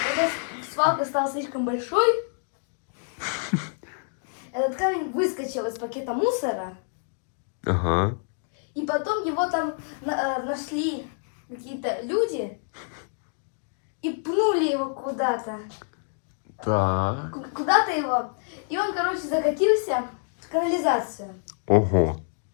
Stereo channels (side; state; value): right; silent; 60 dB below the other